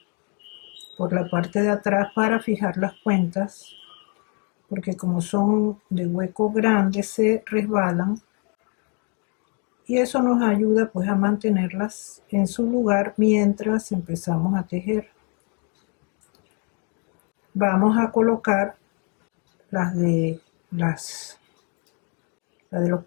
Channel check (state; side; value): quieter; right; 36.2 dB